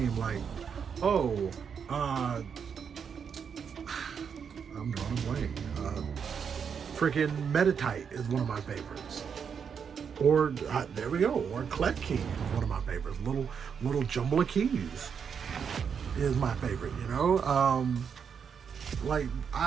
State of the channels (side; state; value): left; quieter; 6.9 dB